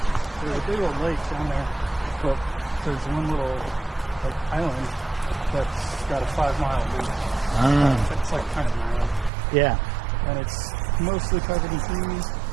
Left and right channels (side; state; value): left; drops out; at 9.3 s